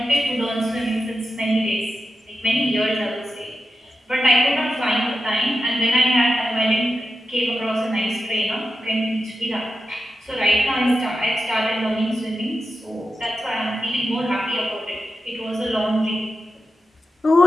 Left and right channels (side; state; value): both; normal; correlation 0.90